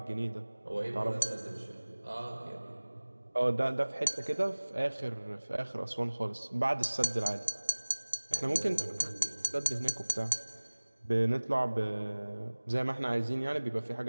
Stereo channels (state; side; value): inverted; both; correlation -1.00